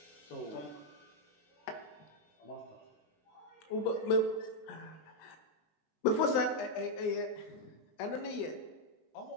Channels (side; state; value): right; late; 20 ms